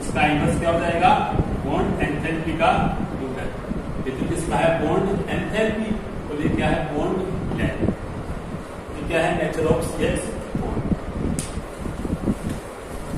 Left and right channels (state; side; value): identical; both; correlation 1.00